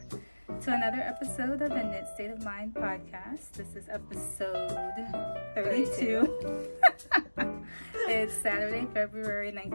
to another episode of the Knit State of Mind podcast. This is episode 32. It's Saturday, February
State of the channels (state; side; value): inverted; both; correlation -1.00